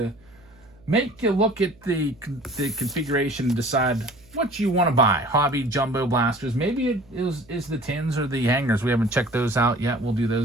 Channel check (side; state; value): right; noise; hum, 28 dB below the sound